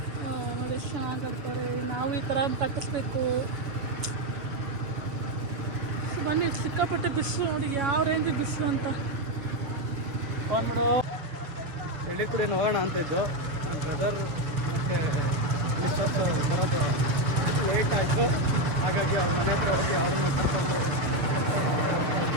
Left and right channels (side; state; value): left; late; 7.0 ms